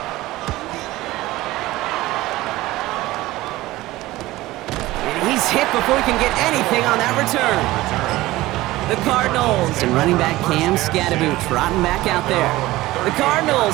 He's hit before he can get anything on that return. The Cardinals and running back Cam Scadaboo trotting back out there. The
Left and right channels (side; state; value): left; quieter; 17.8 dB